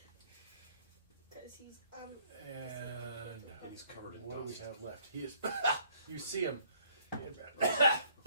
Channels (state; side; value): inverted; both; correlation -0.62